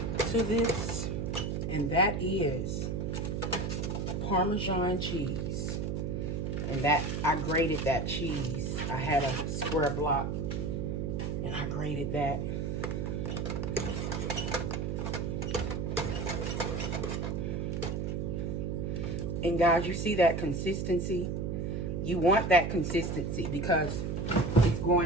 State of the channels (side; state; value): right; noise; hum, 1 dB below the sound